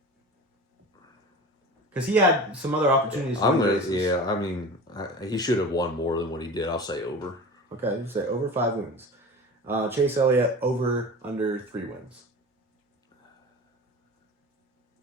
because he had some other opportunities. He should have won more than what he did. I'll say over. Okay, you say over 5 wins. Chase Elliott over under 3 wins.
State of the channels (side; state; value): both; normal; correlation 0.34